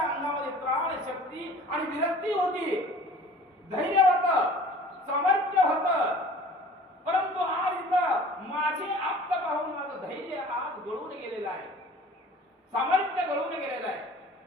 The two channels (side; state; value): both; normal; correlation 0.46